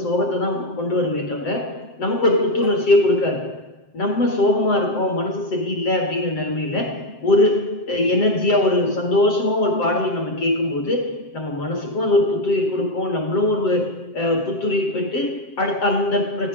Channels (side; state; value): right; late; 7.7 ms